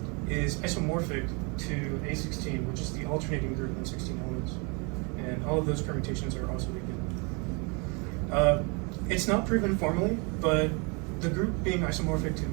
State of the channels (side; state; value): left; quieter; 32.2 dB